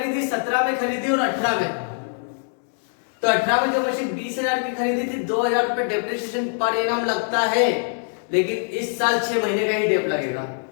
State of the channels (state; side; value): silent; right; 63 dB below the other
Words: 17 में खरीदी और 18 में। तो 18 में जो मशीन 20,000 की खरीदी थी, 2,000 रुपए डेप्रिसिएशन पर एनम लगता है, लेकिन इस साल 6 महीने का ही डेप लगेगा।